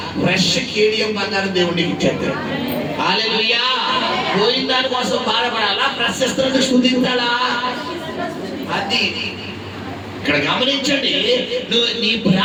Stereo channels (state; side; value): identical; both; correlation 1.00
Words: ఫ్రెష్ కేడియం బంగారం దేవుడికి ఇచ్చేస్తాడు. హల్లెలూయా. పోయిన దాని కోసం బాధపడాలా, ప్రశస్తను స్తుతించాలా? అది ఇక్కడ గమనించండి. నువ్వు నీ